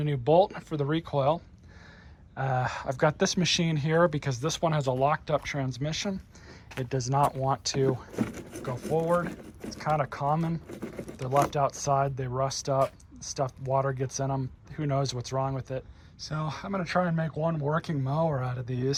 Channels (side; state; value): both; identical; correlation 1.00